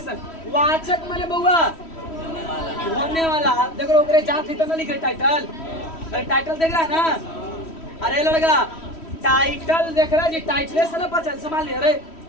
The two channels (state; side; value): late; right; 3.1 ms